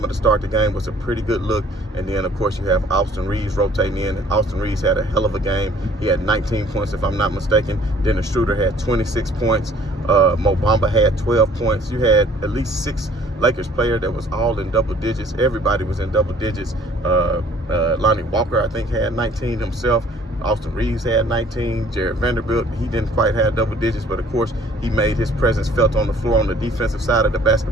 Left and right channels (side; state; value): both; normal; correlation 0.55